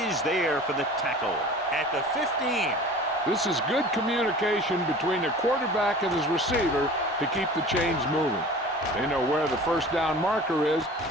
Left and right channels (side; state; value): both; normal; correlation 0.41